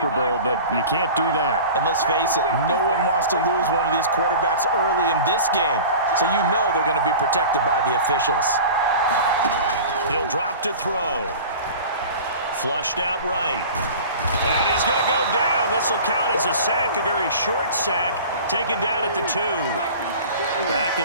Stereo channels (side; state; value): both; inverted; correlation -0.38